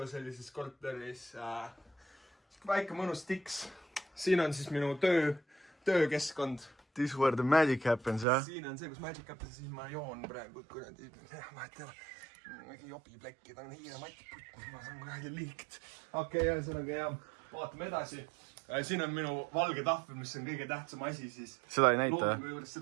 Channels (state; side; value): drops out; left; at 8.2 s